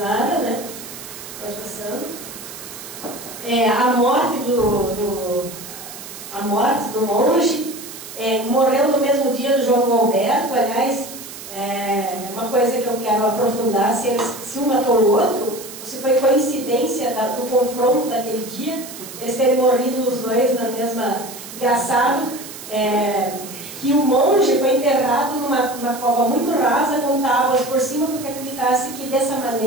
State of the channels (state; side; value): noise; right; hiss, 13 dB below the sound